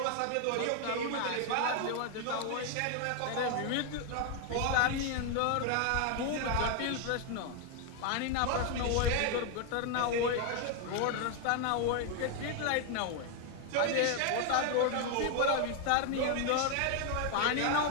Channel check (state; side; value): different; both; correlation 0.00